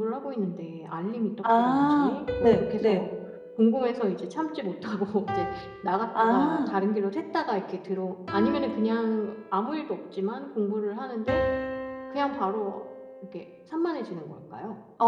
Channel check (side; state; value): both; identical; correlation 1.00